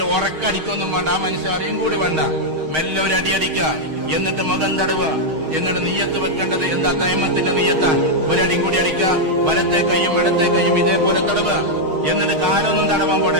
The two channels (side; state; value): left; late; 6.4 ms